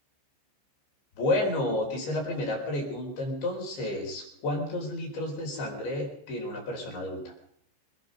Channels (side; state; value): right; late; 15 ms